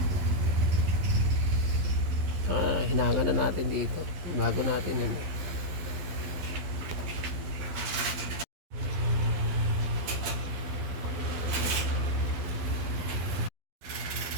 Hinahawan na natin dito. Bago natin yan.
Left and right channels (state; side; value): late; left; 12 ms